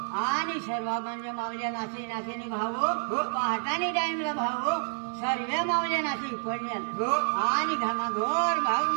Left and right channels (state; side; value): silent; left; 59 dB below the other